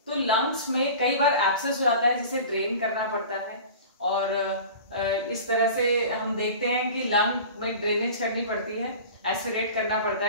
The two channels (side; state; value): both; inverted; correlation -0.37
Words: तो लंग्स में कई बार एब्सेस हो जाता है जिसे ड्रेन करना पड़ता है, और इस तरह से हम देखते हैं कि लंग में ड्रेनेज करनी पड़ती है, एस्पिरेट करना पड़ता